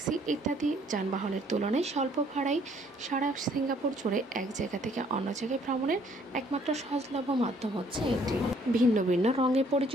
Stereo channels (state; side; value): normal; both; correlation 0.63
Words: ইত্যাদি যানবাহনের তুলনায় স্বল্প ভাড়ায় সারা সিঙ্গাপুর জুড়ে এক জায়গা থেকে অন্য জায়গায় ভ্রমণের একমাত্র সহজলভ্য মাধ্যম হচ্ছে এটি। ভিন্ন ভিন্ন রঙে